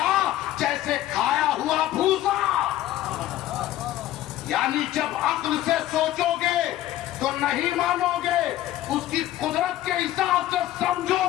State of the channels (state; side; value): quieter; right; 14.1 dB